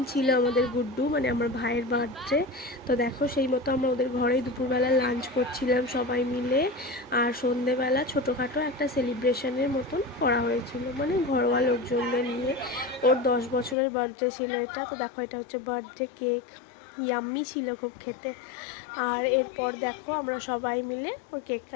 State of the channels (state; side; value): drops out; right; at 13.8 s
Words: ছিল আমাদের গুড্ডু, মানে আমার ভাইয়ের বার্থডে। তো দেখো, সেই মতো আমরা ওদের ঘরেই দুপুরবেলা লাঞ্চ করছিলাম সবাই মিলে। আর সন্ধেবেলা ছোটোখাটো একটা সেলিব্রেশনের মতন করা হয়েছিল, মানে ঘরোয়া লোকজনদের নিয়ে। ওর 10 বছরের বার্থডে ছিল এটা। তো দেখো, এটা হচ্ছে বার্থডে কেক। ইয়াম্মি ছিল খুব খেতে। আর এরপর দেখো, আমরা সবাই মিলে ওই কেক